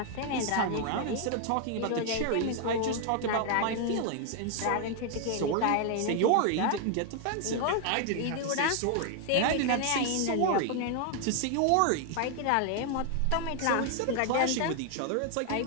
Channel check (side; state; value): both; different; correlation 0.00